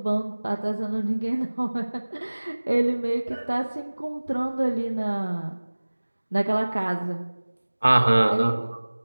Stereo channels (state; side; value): inverted; both; correlation -1.00